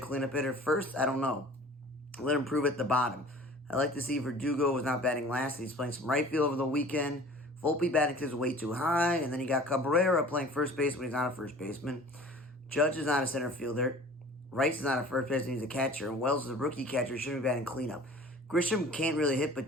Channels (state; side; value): normal; both; correlation 0.45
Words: hitter. First, I don't know. Let him prove at the bottom. I like to see Verdugo was not batting last. He's playing some right field over the weekend. Volpe batting is way too high. And then you got Cabrera playing first base when he's not a first baseman. Judge is not a center fielder. Rice is not a first baseman. He's a catcher. And Wells is a rookie catcher. He shouldn't be batting cleanup. Grisham can't really hit,